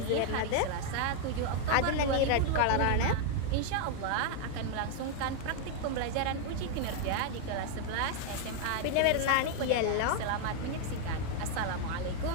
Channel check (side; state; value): both; different; correlation 0.00